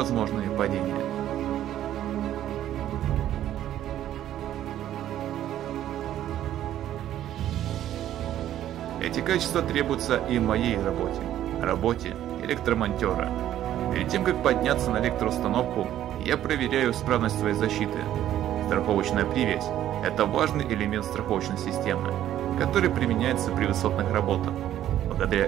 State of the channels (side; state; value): left; quieter; 12.0 dB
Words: падения. Эти качества требуются и в моей работе электромонтера. Перед тем, как подняться на электроустановку, я проверяю исправность своей защиты. Страховочная привязь – это важный элемент страховочной системы, который применяется при высотных работах. Благодаря